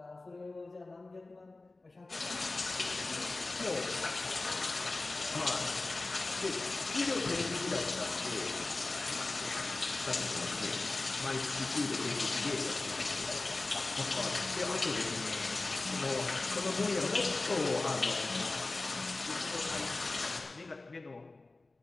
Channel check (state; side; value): quieter; right; 3.3 dB